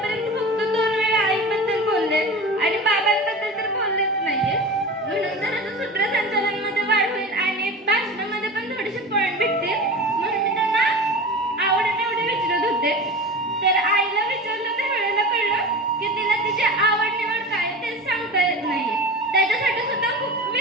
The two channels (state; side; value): normal; both; correlation 0.32